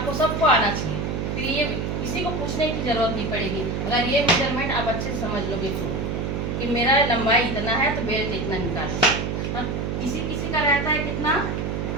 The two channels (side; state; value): right; noise; hum, 2 dB below the sound